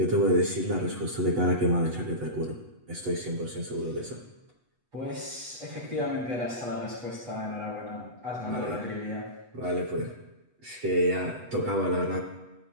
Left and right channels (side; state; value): left; late; 8.2 ms